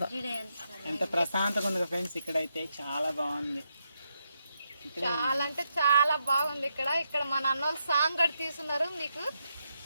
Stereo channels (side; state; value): both; inverted; correlation -0.82